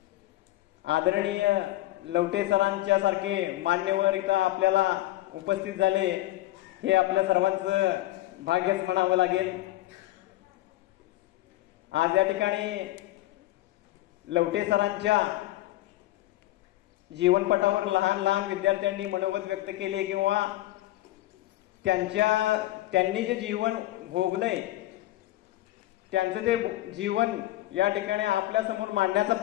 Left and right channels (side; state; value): right; quieter; 16.3 dB